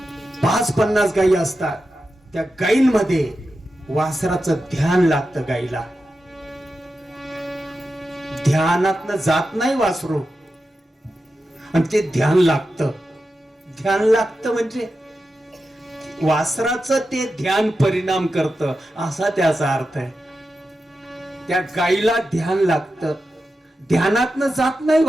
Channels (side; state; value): both; normal; correlation 0.90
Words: पाच 50 गायी असतात, त्या गायींमध्ये वासराचं ध्यान लागतं. गायीला ध्यानातनं जात नाही वासरू, आणि ते ध्यान लागतं. ध्यान लागतं म्हणजे वासराचं ते ध्यान परिणाम करतं, असा त्याचा अर्थ आहे. त्या गायीला ध्यान लागतं, ध्यानातनं जात नाही